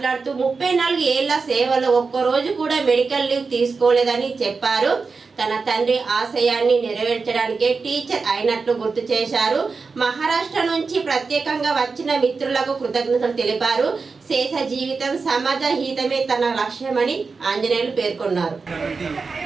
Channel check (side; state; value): left; quieter; 4.6 dB